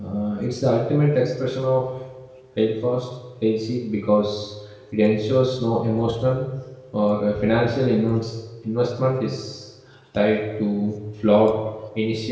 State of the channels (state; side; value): identical; both; correlation 1.00